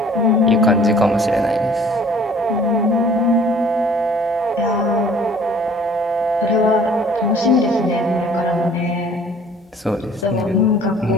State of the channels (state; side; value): normal; both; correlation 0.53